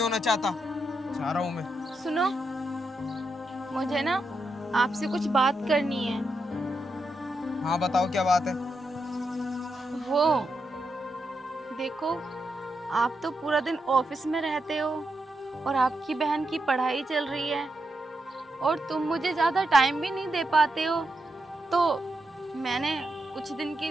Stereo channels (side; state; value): both; normal; correlation 0.84